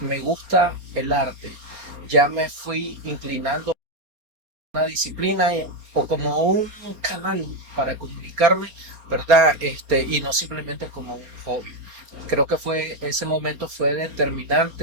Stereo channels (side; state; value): left; late; 4.3 ms